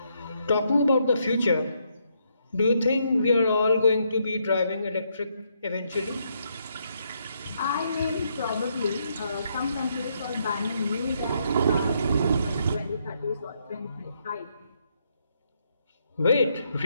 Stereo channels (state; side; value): inverted; both; correlation -0.76